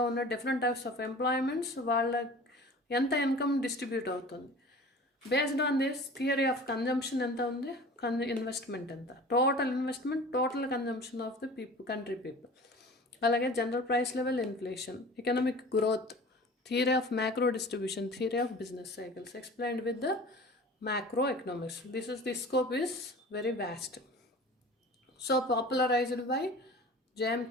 ఉన్న డిఫరెంట్ టైప్స్ ఆఫ్ ఎంప్లాయ్మెంట్స్, వాళ్ళ ఎంత ఇన్కమ్ డిస్ట్రిబ్యూట్ అవుతుంది. Based on this theory of consumption ఎంత ఉంది, ఇన్వెస్ట్మెంట్ ఎంత, total investment, total consumption of the country people. అలాగే general price level, inflation, economic growth, theory of macro distribution, theory of business cycles explained with the macroeconomics. The scope is very vast. So popularized by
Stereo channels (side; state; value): both; normal; correlation 0.41